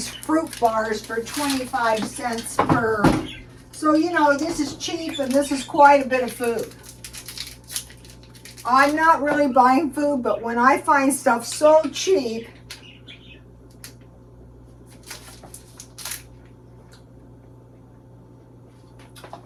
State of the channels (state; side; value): identical; both; correlation 1.00